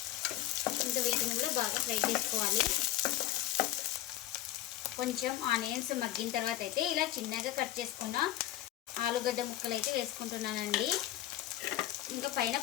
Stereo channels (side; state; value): right; quieter; 14.1 dB